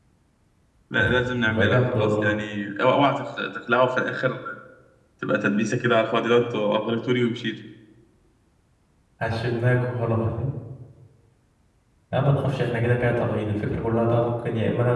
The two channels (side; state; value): both; identical; correlation 1.00